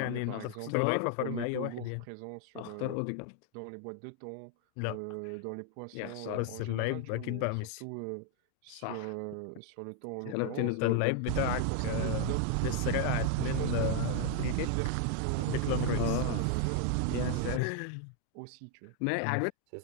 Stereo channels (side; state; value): both; different; correlation 0.00